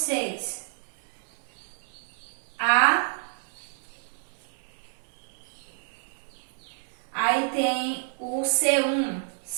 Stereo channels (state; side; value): silent; left; digital silence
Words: Aí tem o C1.